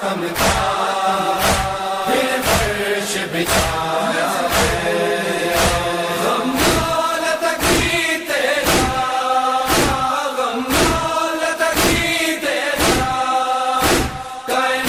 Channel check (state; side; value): identical; both; correlation 1.00